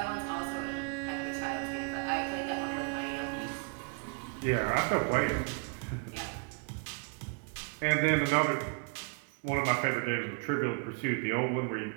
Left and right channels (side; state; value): left; quieter; 35.4 dB